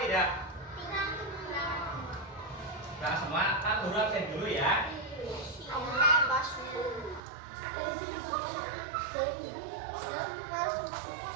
tidak? Berangkat semua. Pak Guru absen dulu ya.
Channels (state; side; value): drops out; left; at 7.2 s